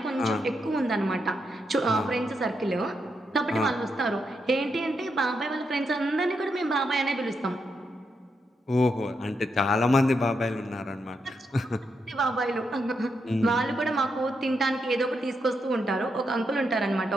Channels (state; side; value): normal; both; correlation 0.82